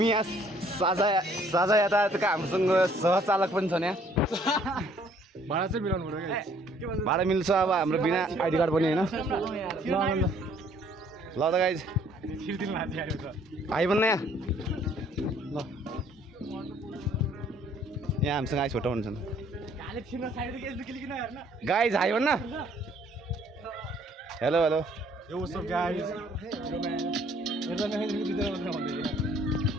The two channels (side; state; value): both; normal; correlation 0.61